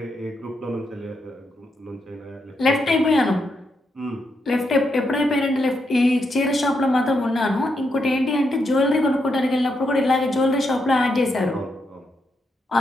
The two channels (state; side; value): normal; both; correlation 0.82